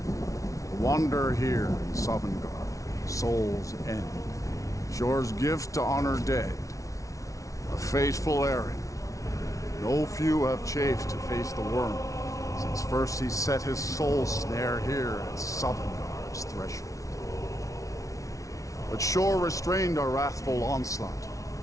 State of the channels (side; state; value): right; late; 0.16 ms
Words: Wander here in Sovngarde, Soul's End. Shor's gift to honor dead. A fateful errand. No few have chafed to face the worm, since first he set his soul snare here at Sovngarde's threshold. But Shor restrained our wrathful onslaught.